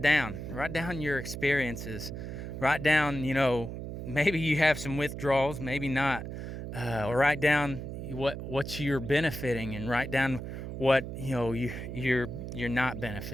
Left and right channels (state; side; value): noise; right; hum, 7 dB below the sound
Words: down. Write down your experiences. Write down, maybe you have some withdrawals, maybe not. Or write down what you're benefiting, and write down what you're not